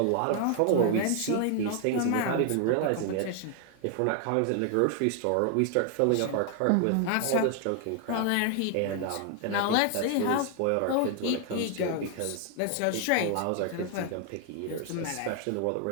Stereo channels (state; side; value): different; both; correlation 0.00